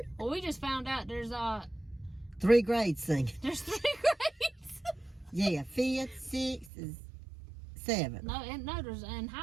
Well, we just found out there's 3 grades singing. There's 3 grades. Yeah, 5th, 6th, 7th. No, there's in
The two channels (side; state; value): left; drops out; at 6.7 s